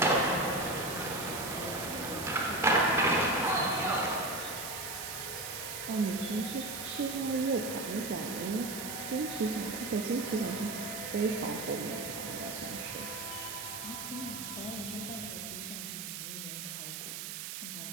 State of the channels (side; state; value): right; noise; hiss, 6 dB below the sound